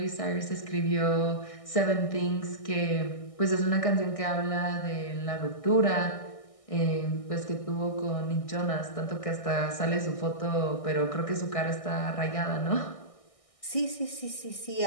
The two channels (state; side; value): late; right; 1.6 ms